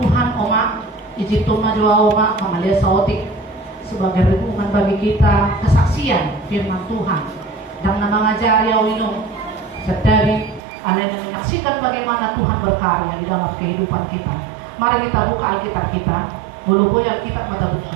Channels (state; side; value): drops out; left; at 10.6 s